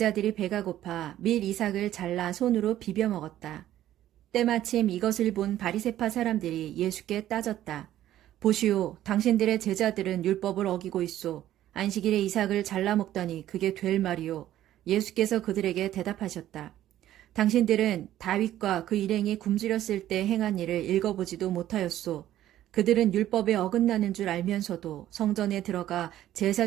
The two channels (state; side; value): quieter; left; 12.9 dB